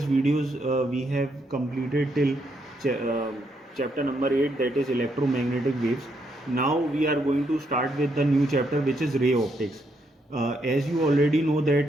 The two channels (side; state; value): both; normal; correlation 0.76